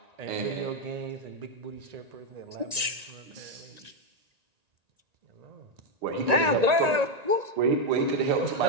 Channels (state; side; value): late; left; 1.9 ms